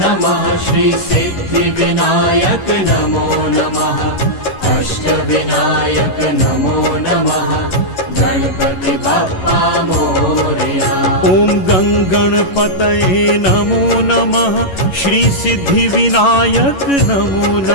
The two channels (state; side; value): late; right; 11 ms